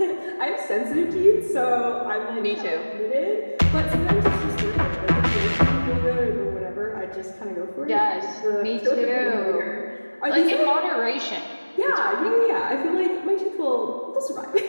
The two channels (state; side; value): inverted; both; correlation -1.00